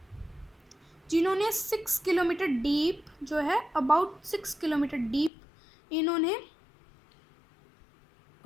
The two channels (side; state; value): right; drops out; at 5.3 s